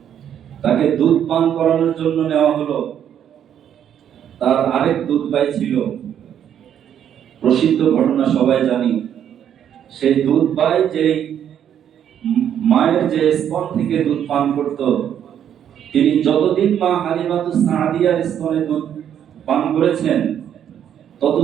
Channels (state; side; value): quieter; left; 9.5 dB